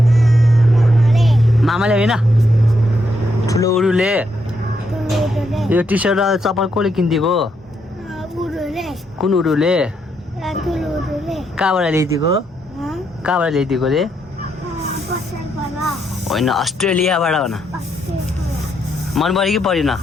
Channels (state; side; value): normal; both; correlation 0.78